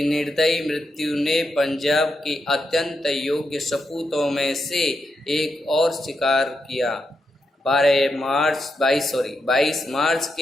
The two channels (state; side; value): normal; both; correlation 0.84